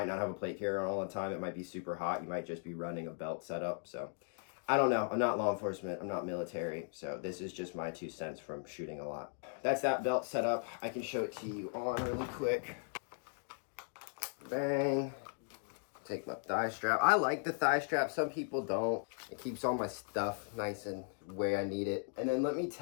not have a plate carrier on all the time. It might be super hot. You might just be running a belt setup. So I don't know. I'm not law enforcement. I'm not military. So this is just my 2 cents from shooting a lot. That's that belt setup. I can show it to you on really quick. Bang. Take my thigh strap. I like the thigh strap. Some people don't. It keeps all my stuff nice and where I need it. And then let me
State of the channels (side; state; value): right; silent; 53 dB below the other